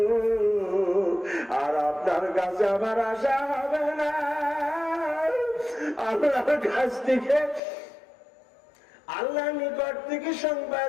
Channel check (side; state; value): right; drops out; at 7.6 s